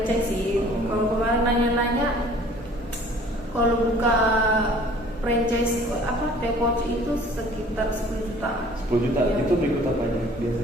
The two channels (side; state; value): both; normal; correlation 0.51